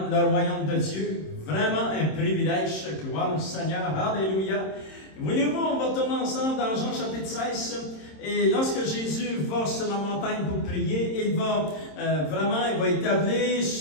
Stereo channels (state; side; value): late; right; 26 ms